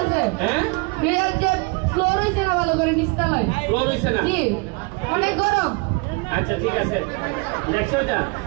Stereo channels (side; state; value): left; quieter; 29.3 dB